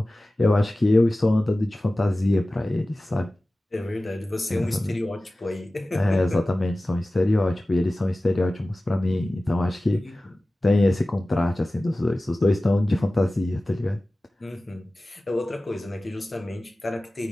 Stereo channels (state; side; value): normal; both; correlation 0.97